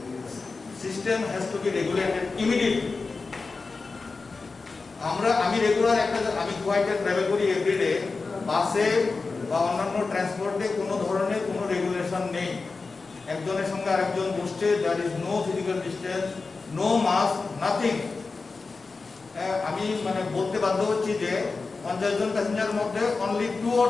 system has to be regulated immediately. আমি regular আমি গুয়াহাটিতে travel করি everyday, বাসে বা অন্যান্য ট্রান্সপোর্টে কোনো ধরনের কোনো regulation নেই। একজনের সঙ্গে আরেকজন বসছে, there is no physical distance, no mask, nothing. আমি মানে বলতে বাধ্য হচ্ছি যে 50 জন প্যাসেঞ্জারের মধ্যে only 2 or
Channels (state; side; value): quieter; right; 4.1 dB